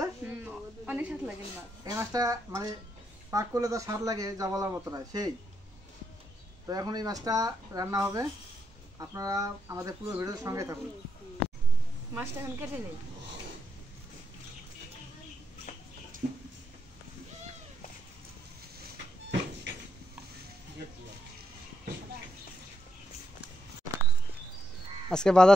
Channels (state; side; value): normal; both; correlation 0.81